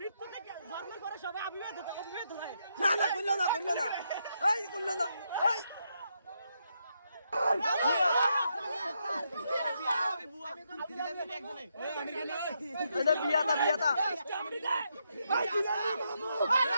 মৃত্যু থেকে জন্মের পরে সবাই অবিবাহিত হয় না না কইলো না এই কইলো না এই এটা বিয়াটা বিয়াটা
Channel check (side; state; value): both; inverted; correlation -0.79